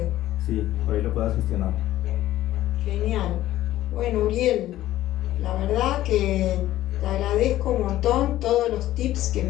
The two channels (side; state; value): right; quieter; 14.4 dB